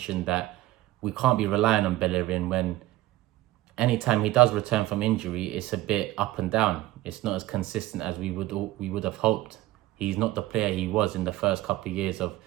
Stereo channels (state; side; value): quieter; left; 16.8 dB